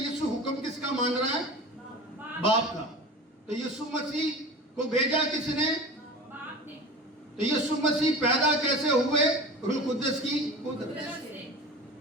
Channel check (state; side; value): normal; both; correlation 0.34